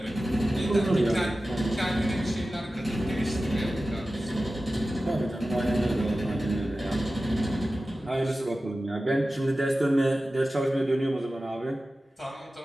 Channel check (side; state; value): both; normal; correlation 0.95